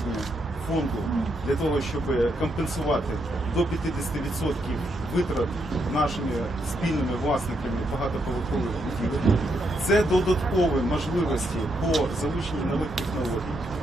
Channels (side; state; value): both; normal; correlation 0.78